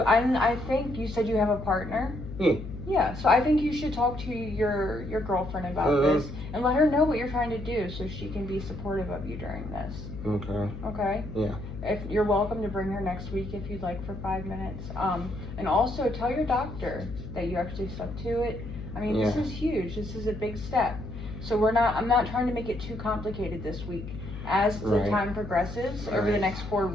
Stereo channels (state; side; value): noise; left; hum, 10 dB below the sound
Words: I think you said you have a partner? Yeah. Yeah, so I think you should talk to your girlfriend about this and let her know what you're trying to do so she can be supportive of you during this. Okay. Okay? Yeah. If you're welcome to bring her next week if you'd like for 5 minutes. And also tell your doctor that you actually stuck to it. I mean, this is huge. This is a big step. So I'm not trying to make it too complicated this week. As the time progresses over the next 4